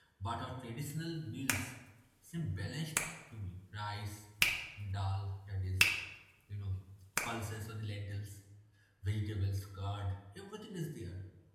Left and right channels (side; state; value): both; identical; correlation 1.00